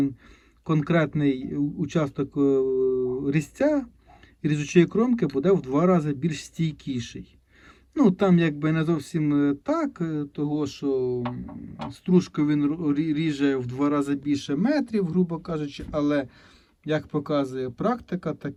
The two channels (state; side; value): identical; both; correlation 1.00